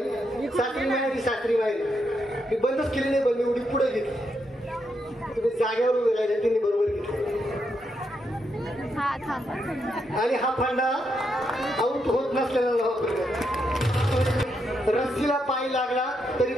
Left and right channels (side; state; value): both; normal; correlation 0.80